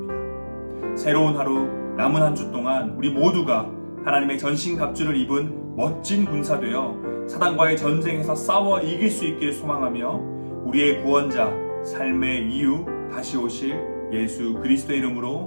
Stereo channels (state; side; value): inverted; both; correlation -1.00